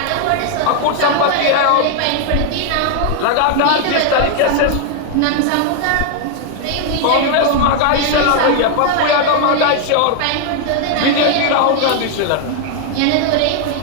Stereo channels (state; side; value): different; both; correlation 0.00